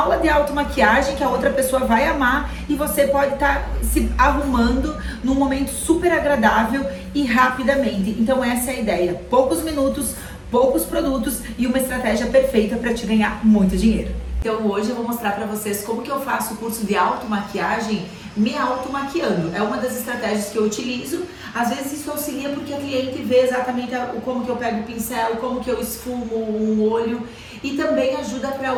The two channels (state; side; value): identical; both; correlation 1.00